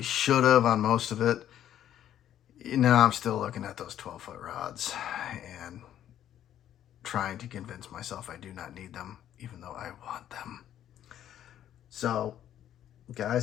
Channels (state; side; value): quieter; right; 11.1 dB